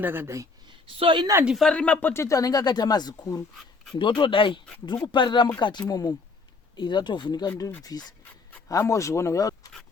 So ina ndifariri mapotato anenge akaita mazikuru. Ndotodai. Ndiri kuparira mukati imomo. Iri ratovhunika ndiribvise. Hamozviona.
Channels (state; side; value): quieter; right; 4.1 dB